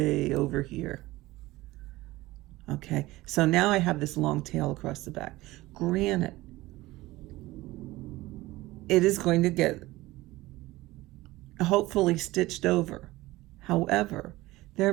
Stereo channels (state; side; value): quieter; left; 18.6 dB